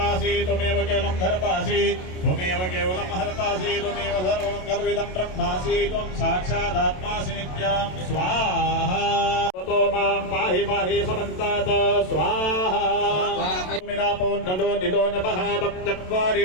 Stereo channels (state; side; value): late; right; 27 ms